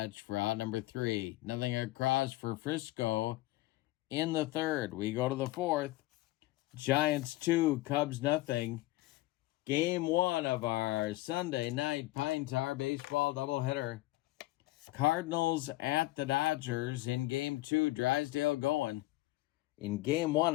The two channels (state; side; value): quieter; right; 18.4 dB